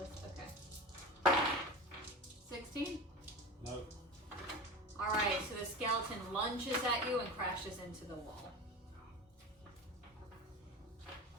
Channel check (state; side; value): normal; both; correlation 0.28